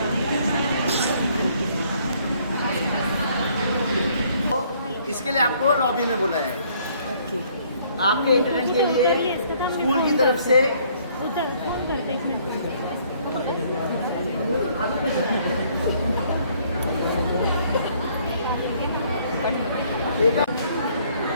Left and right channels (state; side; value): inverted; both; correlation -0.63